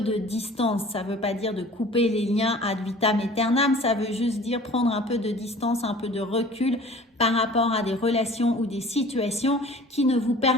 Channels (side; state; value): both; normal; correlation 0.46